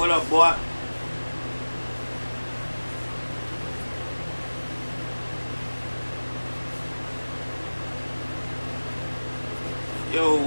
up, boy? Yo,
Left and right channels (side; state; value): both; inverted; correlation -1.00